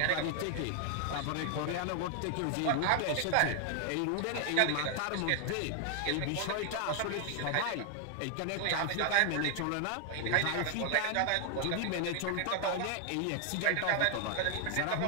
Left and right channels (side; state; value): both; different; correlation 0.00